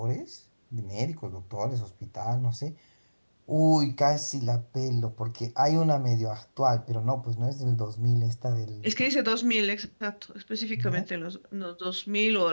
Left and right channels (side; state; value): both; inverted; correlation -1.00